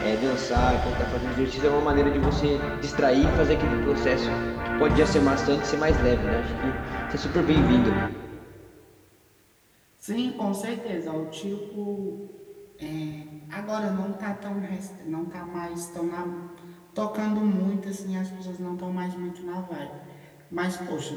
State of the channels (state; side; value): identical; both; correlation 1.00